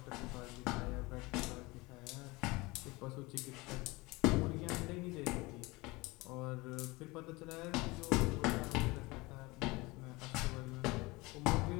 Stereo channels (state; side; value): quieter; right; 23.2 dB